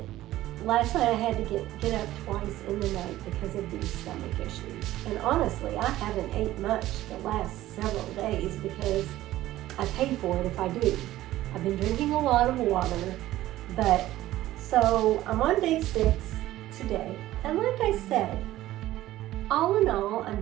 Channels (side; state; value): left; quieter; 15.1 dB